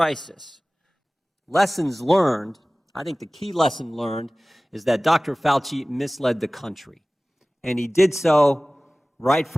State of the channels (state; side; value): normal; both; correlation 0.98